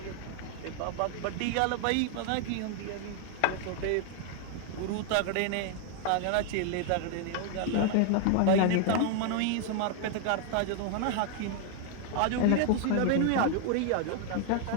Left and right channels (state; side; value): different; both; correlation 0.00